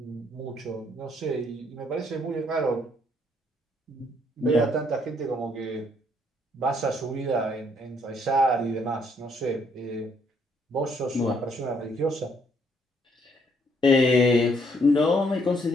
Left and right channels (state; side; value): normal; both; correlation 0.69